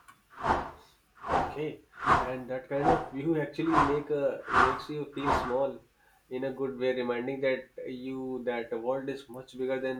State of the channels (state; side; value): identical; both; correlation 1.00